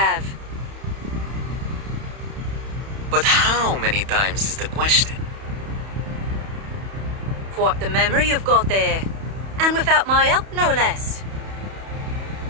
But how many times is the question? Quite the memory you've got there. And without my help, no less.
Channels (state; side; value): late; left; 31 ms